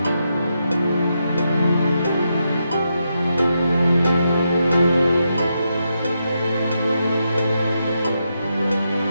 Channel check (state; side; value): inverted; both; correlation -0.84